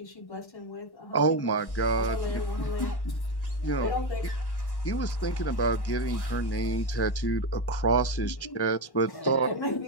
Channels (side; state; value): right; late; 1.1 ms